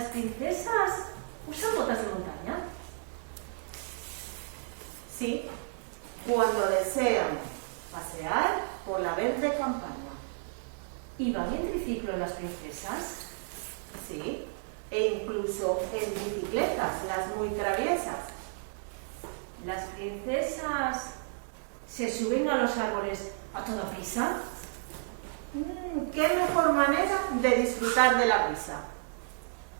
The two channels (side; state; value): left; silent; digital silence